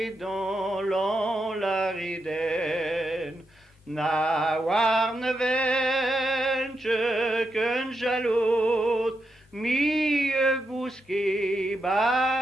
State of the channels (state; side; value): normal; both; correlation 0.84